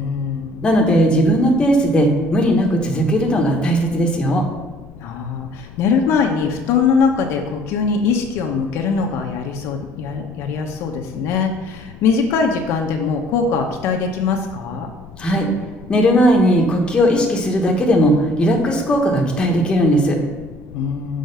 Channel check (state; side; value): noise; left; rumble, 20 dB below the sound